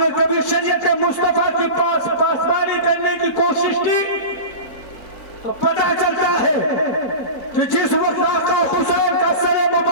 کبھی شریعت مصطفیٰ کی پاسبانی کرنے کی کوشش کی؟ تو پتہ چلتا ہے کہ جس وقت آقا حسین کا سر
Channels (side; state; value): right; late; 4.4 ms